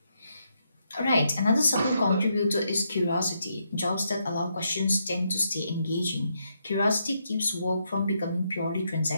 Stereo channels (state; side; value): inverted; both; correlation -0.79